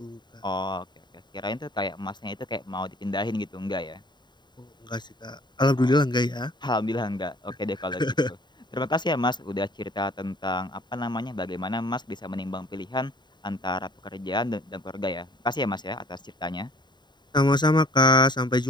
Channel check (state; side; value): late; right; 0.21 ms